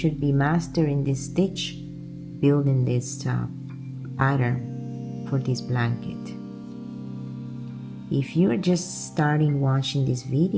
be mastering this stitch, building this pattern for this blanket. If you're just starting watching this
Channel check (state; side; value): identical; both; correlation 1.00